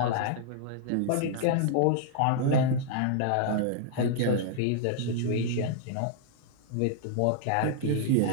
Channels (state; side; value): different; both; correlation -0.01